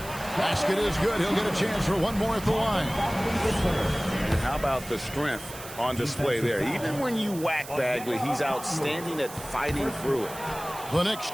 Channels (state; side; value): noise; right; hiss, 14 dB below the sound